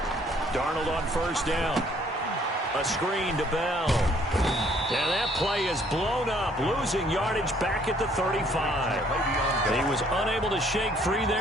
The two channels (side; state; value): both; normal; correlation 0.62